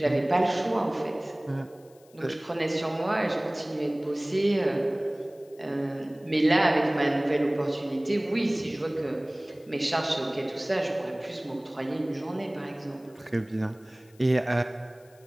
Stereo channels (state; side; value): noise; left; hiss, 30 dB below the sound